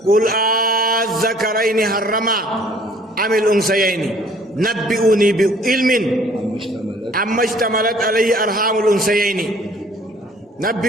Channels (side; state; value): both; normal; correlation 0.57